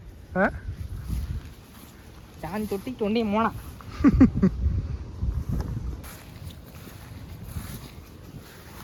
ಚಾನ್ ತೊಟ್ಟಿ ತೊಂಡಿ ಮೋಣ.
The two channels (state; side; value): identical; both; correlation 1.00